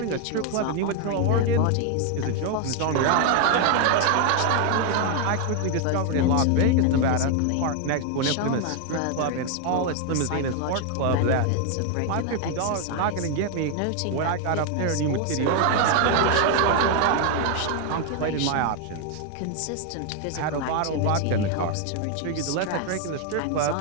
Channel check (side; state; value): both; different; correlation 0.00